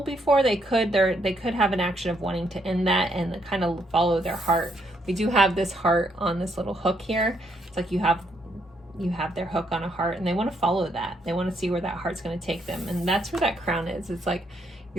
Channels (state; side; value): normal; both; correlation 0.74